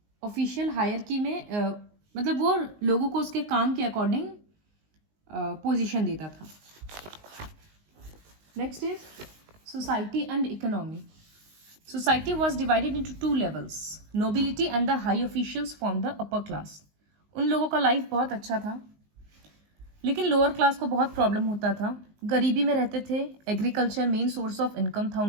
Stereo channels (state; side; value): late; left; 19 ms